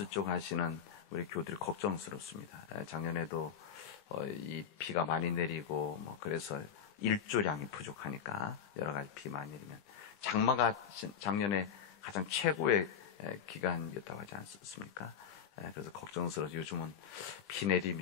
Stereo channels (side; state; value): right; quieter; 7.6 dB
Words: 쪽 하시는 우리 교우들이 걱정스럽습니다. 작년에도 이 비가 많이 내리고 그래서 일조량이 부족하니까 여러 가지 비 많이 내리면 장마가 작년에 가장 최고의 기간이었다고 하지 않습니까? 그래서 걱정스러워서 요즘은 비